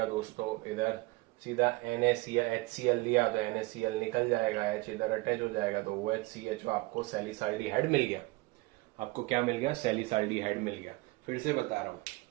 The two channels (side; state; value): left; quieter; 22.6 dB